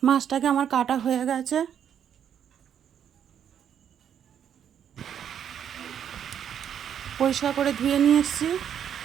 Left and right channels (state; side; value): quieter; left; 8.9 dB